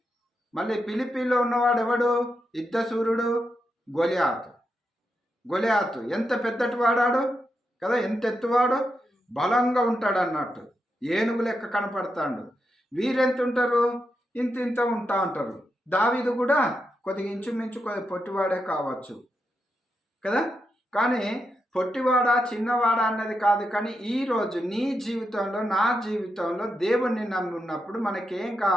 మళ్ళీ ఫిలిప్పీలో ఉన్నవాడు ఎవడు? యుద్ధశూరుడు గొలియాతు. ఎంత పెద్దటి వాడాడు కదా, ఎంత ఎత్తువాడు, బలంగా ఉంటాడు అన్నట్టు. ఏనుగు లెక్క కనపడతాడు. వీరెంత ఉంటారు? ఇంత ఉంటా ఉంటారు. దావీదు కూడా కొద్దిగా ఇంచుమించు కొద్దిగా పొట్టివాడే కావచ్చు కదా. కానీ పొట్టివాడా చిన్నవాడా అన్నది కాదు. కానీ ఈరోజు నీ జీవితంలో, నా జీవితంలో దేవుణ్ణి నమ్మి ఉన్నప్పుడు మనకేం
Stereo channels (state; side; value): normal; both; correlation 0.85